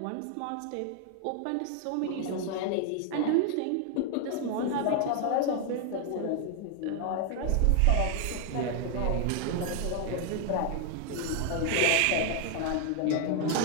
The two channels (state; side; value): different; both; correlation 0.00